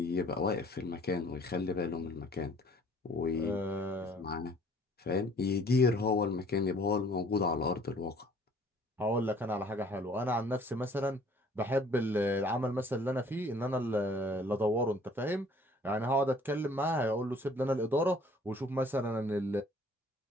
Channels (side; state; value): both; normal; correlation 0.55